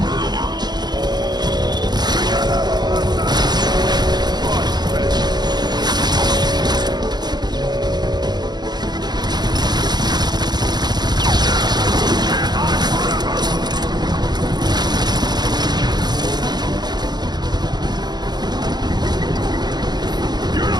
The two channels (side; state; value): left; late; 0.20 ms